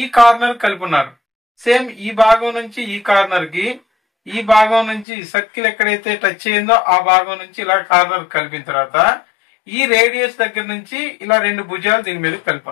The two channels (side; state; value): right; drops out; at 5.1 s